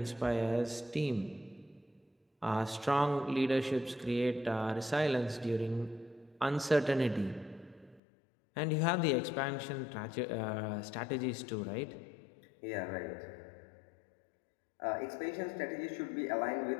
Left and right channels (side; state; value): right; drops out; at 8.0 s